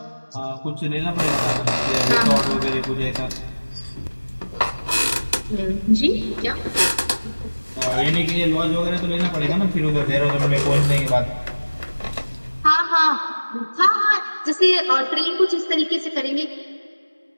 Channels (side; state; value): both; inverted; correlation -1.00